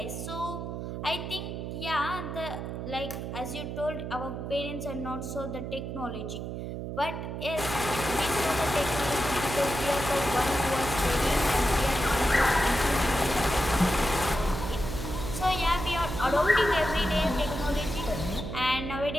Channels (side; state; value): right; noise; hum, 6 dB below the sound